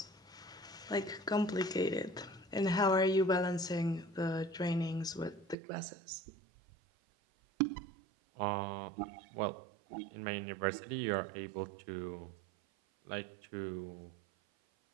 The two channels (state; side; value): drops out; left; at 5.6 s